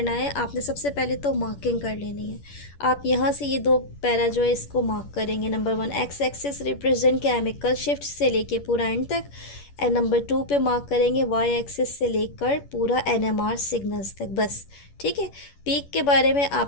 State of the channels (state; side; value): late; right; 11 ms